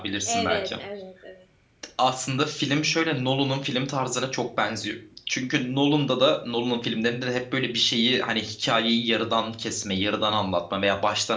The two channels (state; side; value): identical; both; correlation 1.00